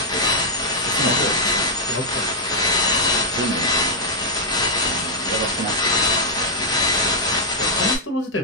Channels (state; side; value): normal; both; correlation -0.05